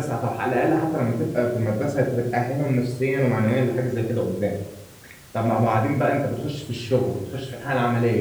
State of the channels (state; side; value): identical; both; correlation 1.00